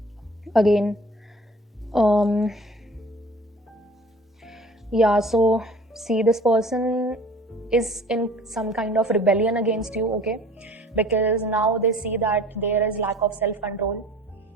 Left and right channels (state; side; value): normal; both; correlation 0.47